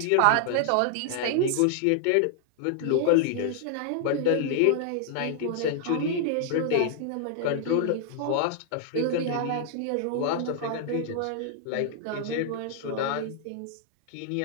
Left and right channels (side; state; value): both; different; correlation -0.01